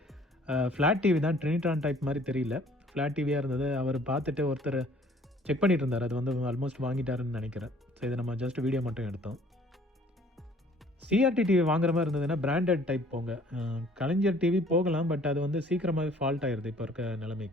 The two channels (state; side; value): normal; both; correlation 0.56